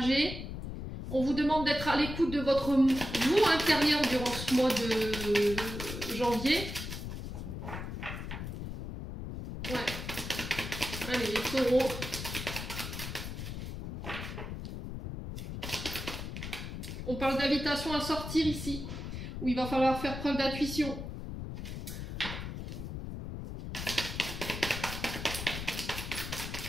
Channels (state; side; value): noise; left; rumble, 7 dB below the sound